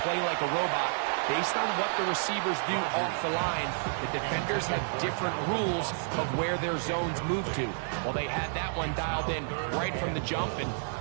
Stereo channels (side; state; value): left; silent; 58 dB below the other